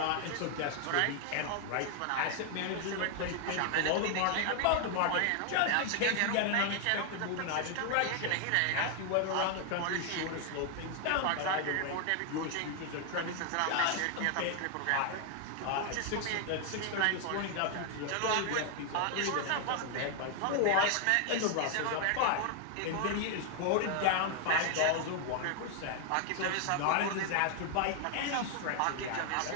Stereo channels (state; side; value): different; both; correlation 0.00